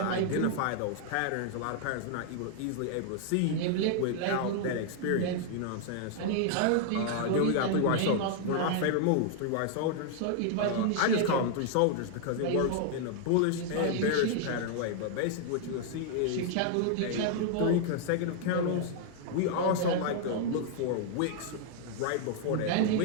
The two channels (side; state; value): both; different; correlation 0.00